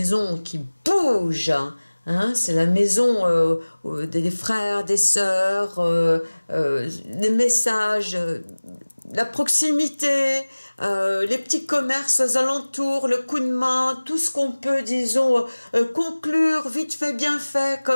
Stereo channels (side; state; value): both; inverted; correlation -1.00